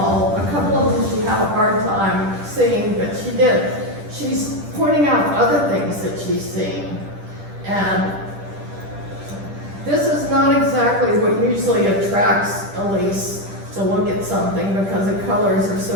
A couple of them she had a hard time seeing, but she did. She's pointing out other things that she's seeing. And this is not exactly what usually attracts Elise to look at something, because the colors are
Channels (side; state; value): left; late; 10 ms